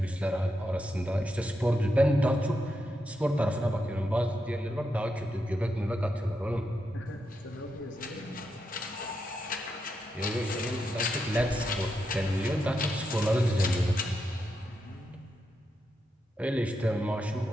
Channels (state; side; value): normal; both; correlation 0.84